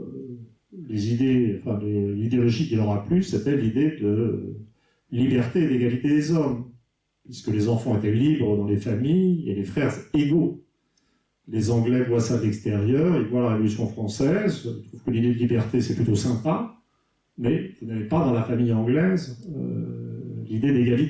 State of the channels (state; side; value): identical; both; correlation 1.00